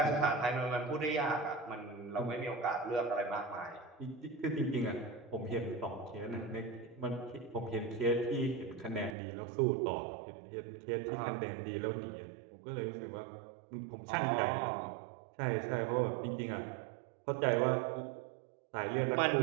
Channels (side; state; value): left; drops out; at 9.2 s